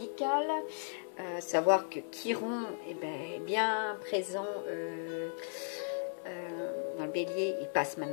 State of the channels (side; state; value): right; silent; 54 dB below the other